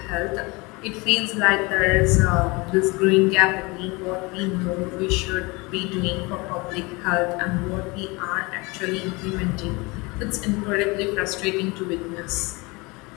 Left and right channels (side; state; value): right; quieter; 25.7 dB